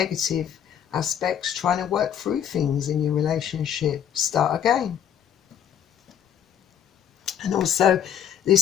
aspects, trying to work through things in your relationship, start again. And also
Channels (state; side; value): quieter; right; 9.2 dB